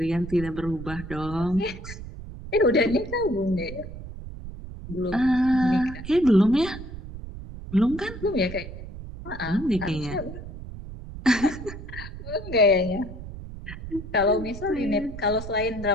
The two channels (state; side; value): noise; right; rumble, 11 dB below the sound